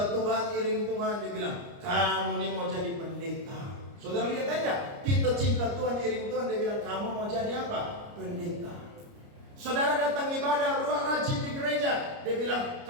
Tuhan, iring Tuhan, dia bilang, kamu nih mau jadi pendeta. Saudara lihat aja, kita cinta Tuhan, iring Tuhan, dia bilang, kamu mau jadi apa? Pendeta. Saudara datang ibadah, rajin di gereja, dia bilang,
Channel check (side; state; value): left; late; 29 ms